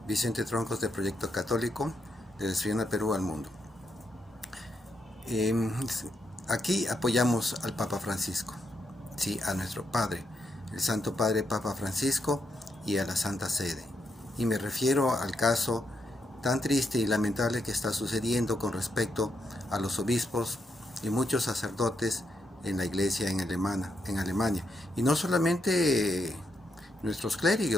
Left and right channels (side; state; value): both; normal; correlation 0.80